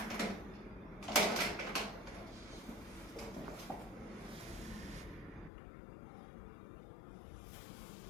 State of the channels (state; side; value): drops out; right; at 5.5 s